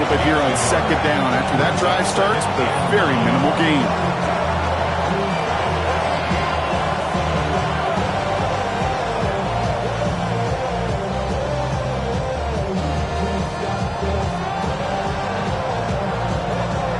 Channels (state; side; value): identical; both; correlation 1.00